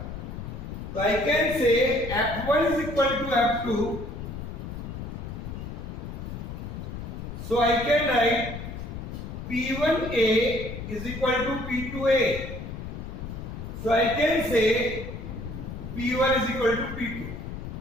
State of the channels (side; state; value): left; noise; rumble, 8 dB below the sound